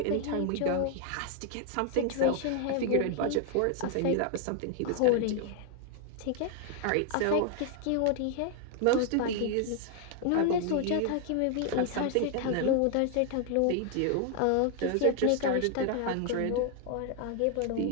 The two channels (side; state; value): both; different; correlation 0.00